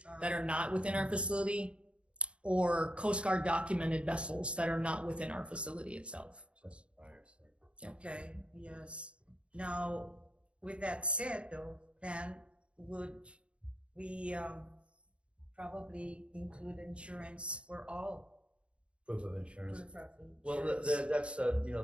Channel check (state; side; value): late; left; 0.058 ms